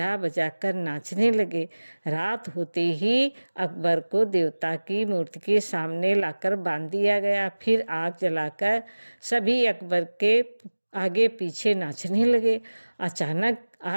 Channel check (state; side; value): inverted; both; correlation -1.00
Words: बजा कर नाचने लगे। रात होते ही अकबर को देवता की मूर्ति के सामने लाकर बांध दिया गया। फिर आग जलाकर सभी अकबर के आगे पीछे नाचने लगे। अचानक